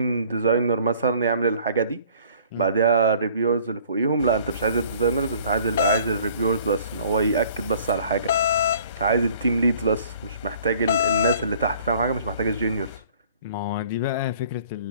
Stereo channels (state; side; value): inverted; both; correlation -0.54